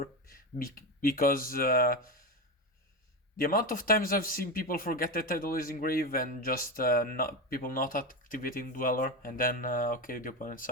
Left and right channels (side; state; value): both; normal; correlation 0.17